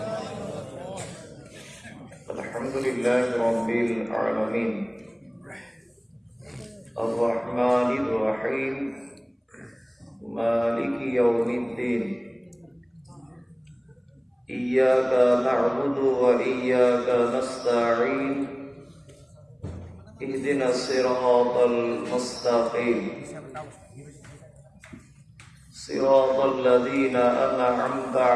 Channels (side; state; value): both; identical; correlation 1.00